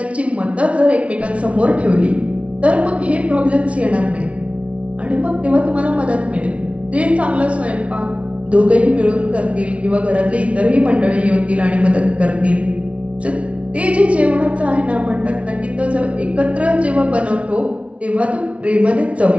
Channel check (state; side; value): late; left; 0.063 ms